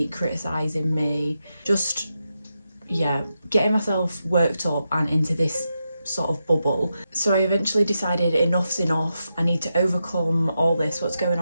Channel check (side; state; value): both; inverted; correlation -0.87